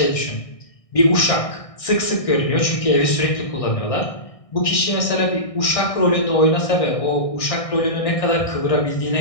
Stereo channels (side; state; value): right; late; 1.6 ms